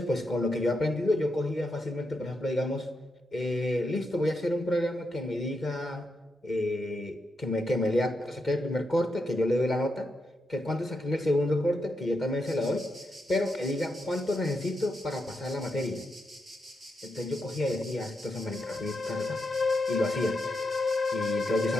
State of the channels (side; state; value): both; normal; correlation 0.84